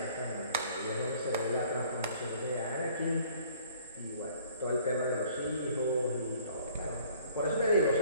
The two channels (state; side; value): inverted; both; correlation -0.55